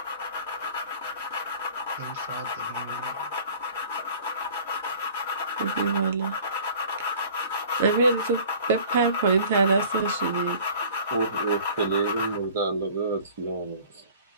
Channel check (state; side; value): inverted; both; correlation -0.47